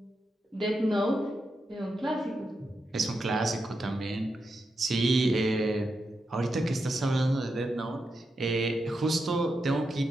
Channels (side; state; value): both; normal; correlation 0.86